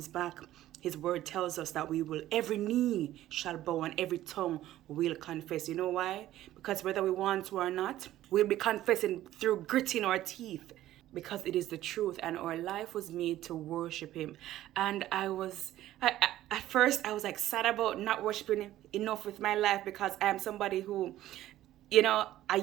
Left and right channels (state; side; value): quieter; left; 14.0 dB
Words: back, his word tells us that we will, every knee shall bow and every tongue will confess. You know why? Because whether we want to or not, we'll be confessing through gritting our teeth. Because it is the truth and our life was made to worship him. And at first I was like sad about not worshiping him enough with my life because I am somebody who, you know, I